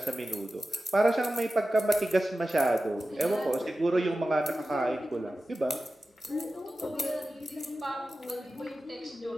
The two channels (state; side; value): normal; both; correlation 0.94